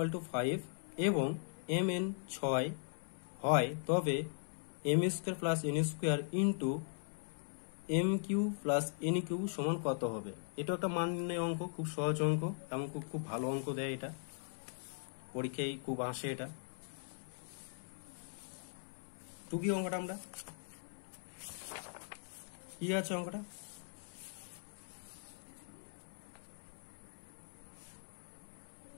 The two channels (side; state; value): right; silent; 51 dB below the other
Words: to 5 এবং mn 6 হয়, তবে m square plus n square into m cube plus n cube সমান কত হবে। এটা একটা মান নির্ণয় অঙ্ক, খুব সহজ অঙ্ক, এবং খুব ভালো অঙ্ক দেয়, এটা পরীক্ষায় খুব আসে। এটা টুকি অঙ্কটা, আমরা কি আছে অঙ্কটা,